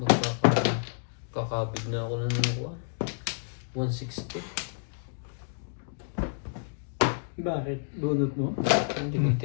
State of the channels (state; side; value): silent; right; digital silence